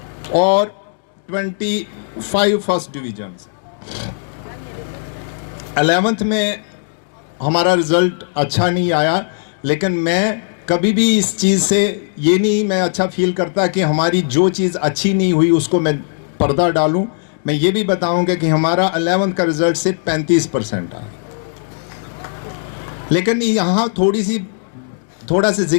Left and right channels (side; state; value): right; silent; digital silence